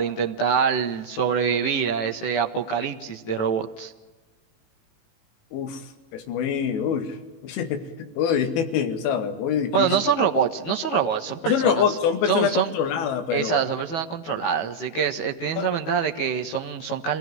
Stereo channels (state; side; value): late; right; 18 ms